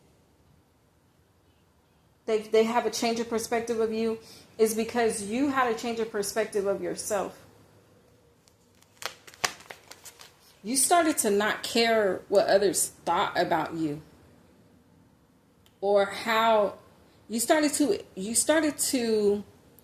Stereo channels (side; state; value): both; identical; correlation 1.00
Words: have a change of perspective of you is because you had a change of perspective of yourself. You started to not care what others thought about you, or how you started to